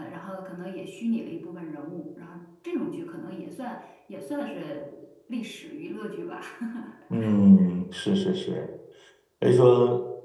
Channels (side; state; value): both; identical; correlation 1.00